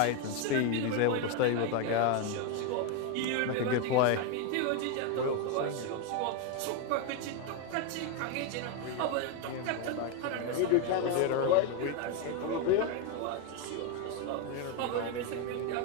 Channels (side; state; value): both; different; correlation 0.02